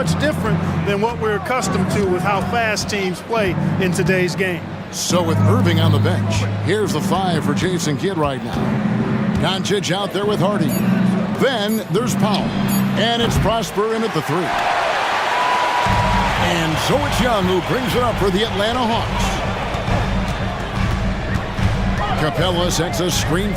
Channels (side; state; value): both; identical; correlation 1.00